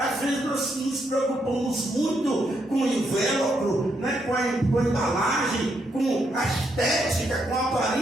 vezes nós nos preocupamos muito com o invólucro, né, com a embalagem, com a estética, com a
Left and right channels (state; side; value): normal; both; correlation 0.78